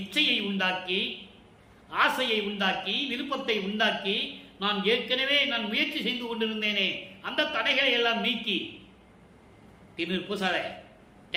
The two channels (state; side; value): identical; both; correlation 1.00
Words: உண்டாக்கி, ஆசையை உண்டாக்கி, விருப்பத்தை உண்டாக்கி, நான் ஏற்கனவே முயற்சி செய்து கொண்டிருந்தேனே அந்த தடைகளை எல்லாம் நீக்கி, திருநீர் பூசாத,